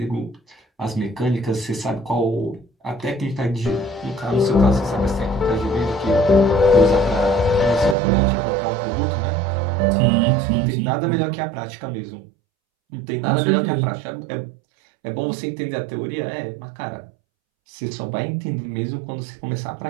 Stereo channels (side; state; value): left; drops out; at 8.0 s